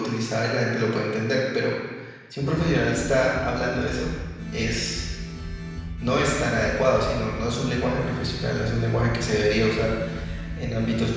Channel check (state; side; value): identical; both; correlation 1.00